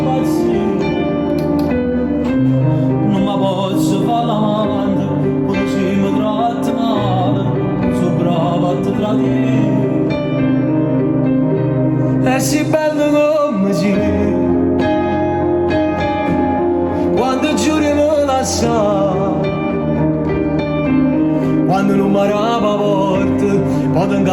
non mi posso fare l'amante, quando si mi tratta male, sono bravo a te tradire. È sì bello come sei, quando giuri me la sa, quando non mi arrava forte, poi ti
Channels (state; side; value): identical; both; correlation 1.00